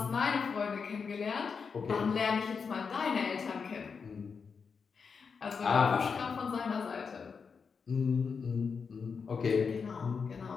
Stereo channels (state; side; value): quieter; right; 5.6 dB